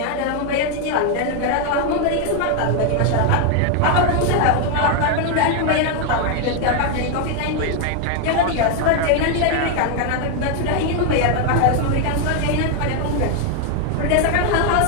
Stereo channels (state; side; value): different; both; correlation 0.01